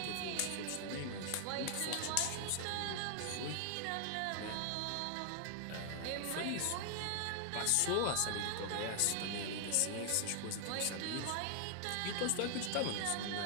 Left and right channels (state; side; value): different; both; correlation 0.00